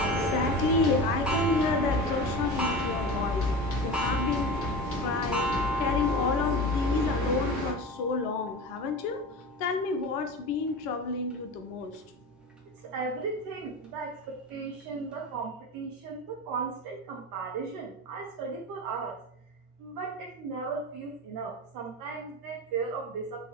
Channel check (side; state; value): both; normal; correlation 0.29